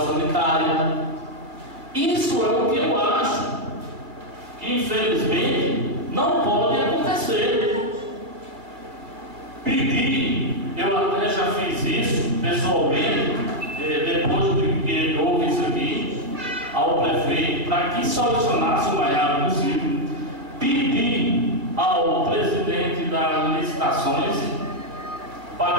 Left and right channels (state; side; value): late; left; 2.2 ms